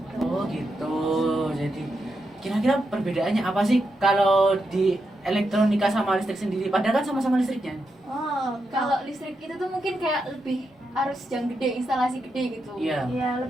Oh gitu. Jadi kira-kira perbedaannya apa sih kalau di elektronika sama listrik sendiri? Padahal kan sama-sama listriknya. Oh, Kalau listrik itu tuh mungkin kayak lebih harus yang gede, instalasi gede gitu. Iya. iya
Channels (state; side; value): normal; both; correlation 0.85